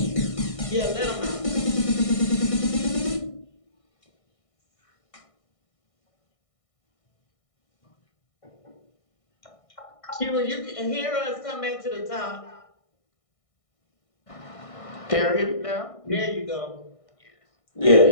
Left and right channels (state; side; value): late; right; 1.6 ms